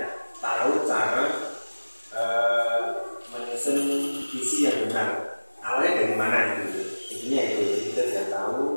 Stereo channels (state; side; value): inverted; both; correlation -1.00